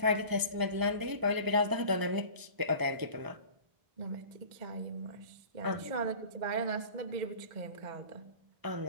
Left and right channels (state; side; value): late; left; 1.0 ms